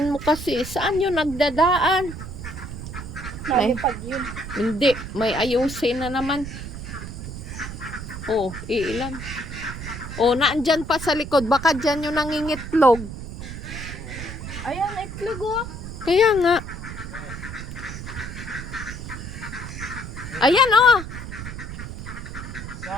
mo kasi. Saan yun nagdadaan? Nalipad yun. Hindi. May ayusin na naman. Oh, ilan? Oh, naandyan pa sa likod. Baka dyan yung nangingitlog. Ayan, itlog oh. Kaya nga. Ayan oh.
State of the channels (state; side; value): noise; right; rumble, 9 dB below the sound